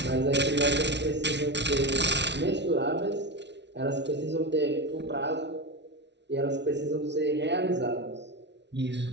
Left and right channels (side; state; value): left; late; 0.51 ms